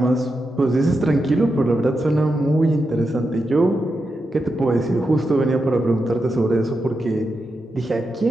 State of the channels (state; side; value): normal; both; correlation 0.87